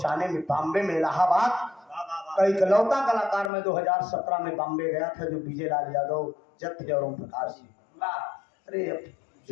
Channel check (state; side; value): drops out; right; at 3.5 s